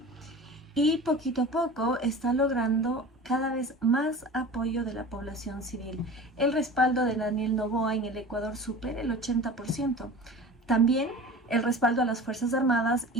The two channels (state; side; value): normal; both; correlation 0.37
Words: y poquito a poco está logrando cada vez más apoyo de la población civil. El respaldo de Daniel Noboa en el Ecuador supera el 80%. También el respaldo a las Fuerzas Armadas